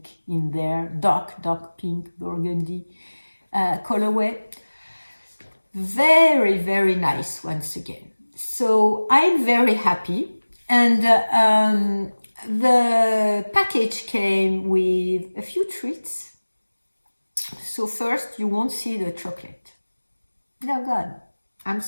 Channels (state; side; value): inverted; both; correlation -1.00